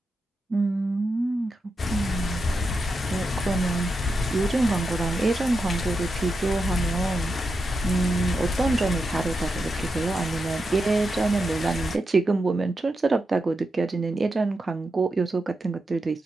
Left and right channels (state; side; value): normal; both; correlation 0.87